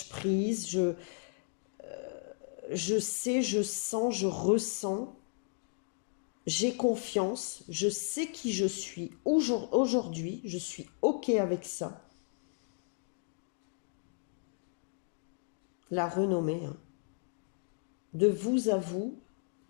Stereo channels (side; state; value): right; silent; digital silence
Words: prise, je sais, je sens, je ressens, j'ai confiance, je sais qui je suis aujourd'hui, je suis OK avec ça. La renommée, hein. De vous à vous